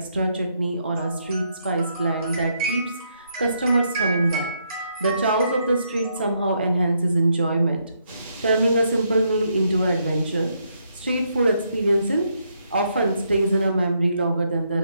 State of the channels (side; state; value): both; inverted; correlation -0.76